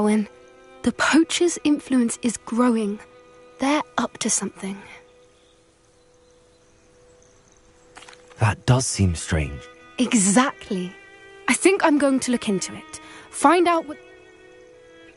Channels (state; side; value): identical; both; correlation 1.00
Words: The poachers' influence is growing. They're up to something. That does seem strange. Exactly. I think I'm going to look into it. Find out what...